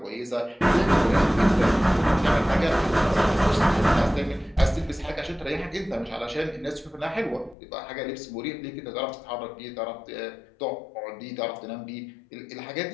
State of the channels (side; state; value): right; drops out; at 7.6 s